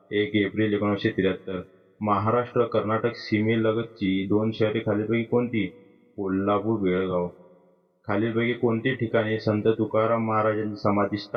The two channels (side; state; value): both; identical; correlation 1.00